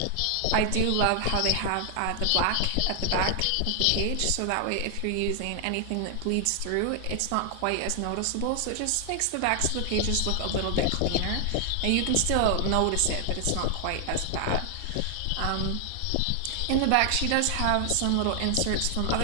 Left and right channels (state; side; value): different; both; correlation 0.00